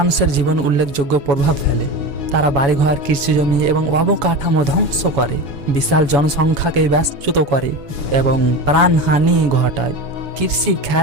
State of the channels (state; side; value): late; left; 7.1 ms